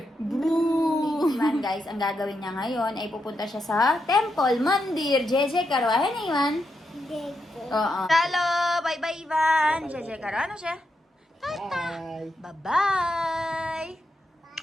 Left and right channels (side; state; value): both; normal; correlation 0.84